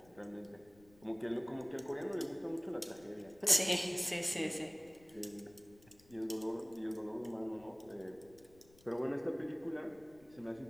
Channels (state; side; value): noise; left; rumble, 26 dB below the sound